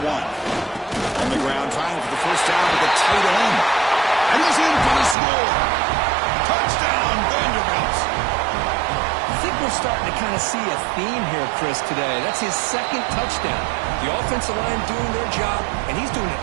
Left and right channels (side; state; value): left; drops out; at 5.2 s